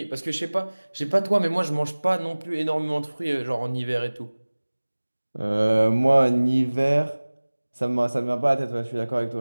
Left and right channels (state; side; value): inverted; both; correlation -1.00